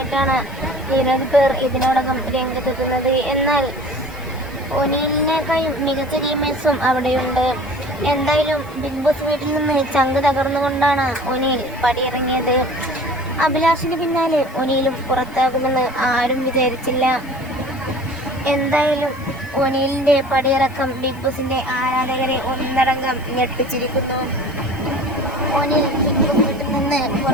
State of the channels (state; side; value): noise; left; hiss, 24 dB below the sound